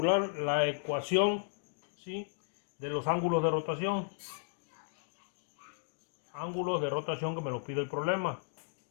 la ecuación, ¿sí?, de los ángulos de rotación. Ángulos de rotación que me lo pide el problema.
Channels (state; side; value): silent; right; digital silence